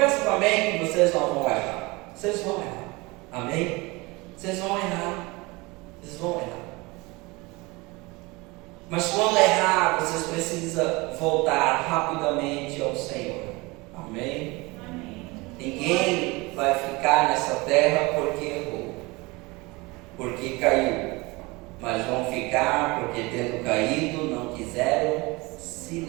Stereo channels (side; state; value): left; quieter; 24.2 dB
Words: também que vocês não vão errar. Vocês vão errar. Amém? Vocês vão errar. Mas quando errar, vocês precisam voltar rapidamente ao Senhor. Amém? Ninguém vai ficar nessa terra porque errou, porque caiu. Mas vão ficar porque, tendo caído, não quiseram se